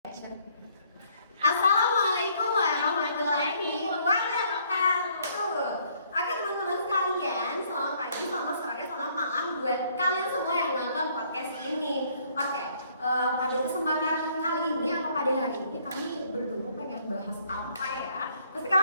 Assalamualaikum warahmatullahi wabarakatuh. Oke teman-teman sekalian, selamat pagi, selamat sore, selamat malam buat kalian semua yang nonton podcast ini. Oke, pada kesempatan kali ini atau pada hari ini kami berdua pengen bahas apa ya? Pasti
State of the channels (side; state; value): both; inverted; correlation -0.64